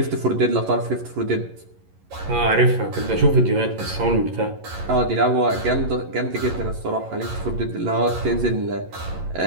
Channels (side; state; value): left; late; 11 ms